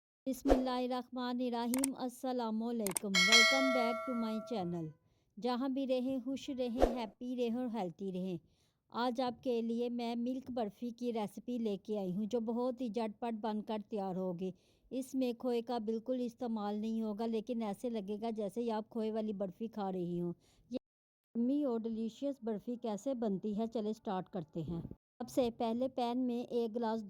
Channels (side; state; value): both; identical; correlation 1.00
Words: बिस्मिल्लाहिर्रहमानिर्रहीम अस्सलामुअलैकुम। Welcome back to my channel. जहाँ भी रहें खुश रहें, हैप्पी रहें और हेल्थी रहें। आज आपके लिए मैं मिल्क बर्फ़ी की रेसिपी लेके आई हूँ जो बहुत ही झटपट बनकर तैयार होगी। इसमें खोए का बिल्कुल इस्तेमाल नहीं होगा, लेकिन ऐसे लगेगा जैसे ही आप खोए वाली बर्फ़ी खा रही हो। ये यम्मी और डिलीशियस बर्फ़ी कैसे बनती है, चले स्टार्ट करते हैं। सबसे पहले पैन में 1 गिलास